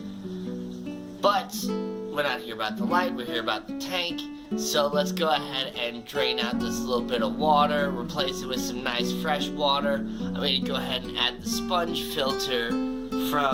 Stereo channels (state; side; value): identical; both; correlation 1.00